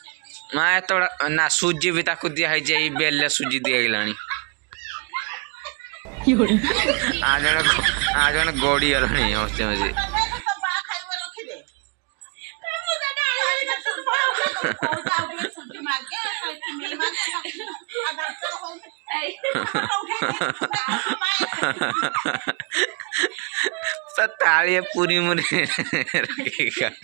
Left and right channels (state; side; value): quieter; left; 34.0 dB